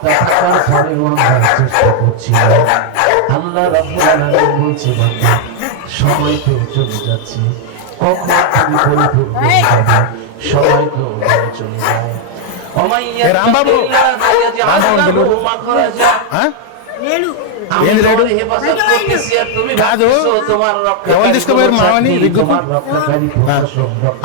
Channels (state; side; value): different; both; correlation 0.00